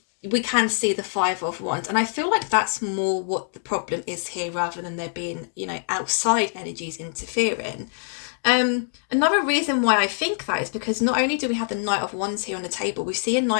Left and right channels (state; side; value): silent; right; 57 dB below the other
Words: we can see the Five of Wands, and I feel like that's more what the problem is here, rather than there being, you know, outside energies interfering. Another reason why I think that is because not only do we have the Knight of Wands here on the table, we see a